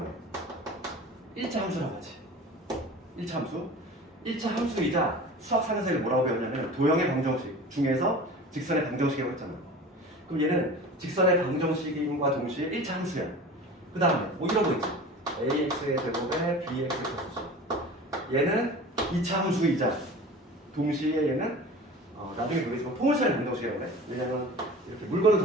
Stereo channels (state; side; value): normal; both; correlation 0.38